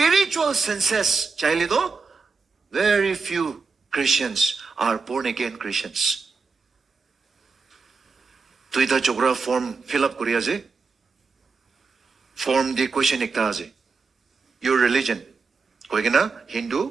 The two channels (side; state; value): left; quieter; 4.6 dB